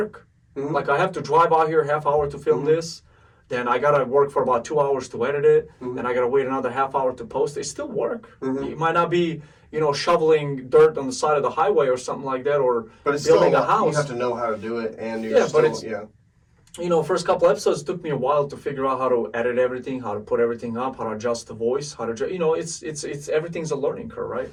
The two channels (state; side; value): identical; both; correlation 1.00